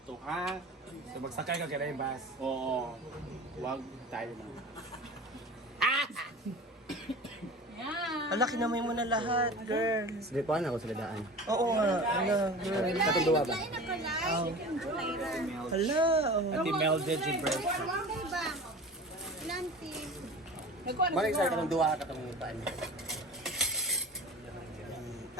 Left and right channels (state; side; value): normal; both; correlation 0.36